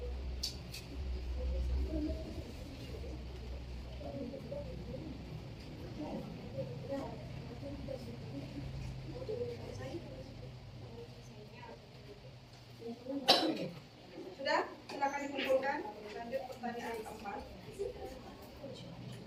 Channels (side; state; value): both; identical; correlation 1.00